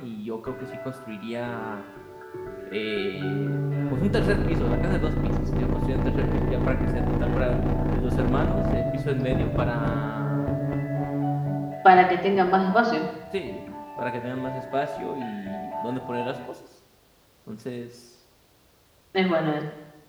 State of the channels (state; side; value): identical; both; correlation 1.00